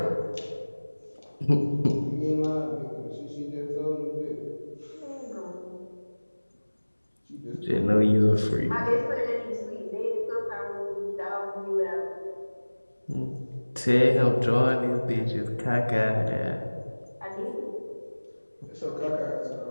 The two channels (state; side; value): inverted; both; correlation -1.00